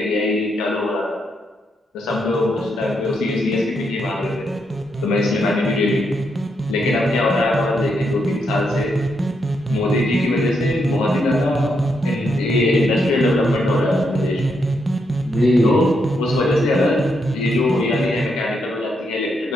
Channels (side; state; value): both; normal; correlation 0.80